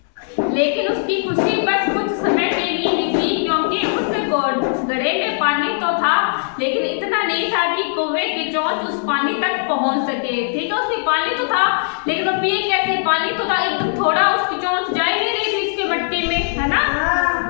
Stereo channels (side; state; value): right; silent; digital silence